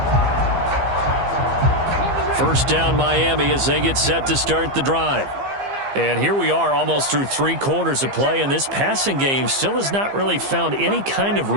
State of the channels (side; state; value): left; late; 15 ms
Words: First down Miami as they get set to start the drive. And here we are almost through 3 quarters of play, and this passing game still has not really found any kind of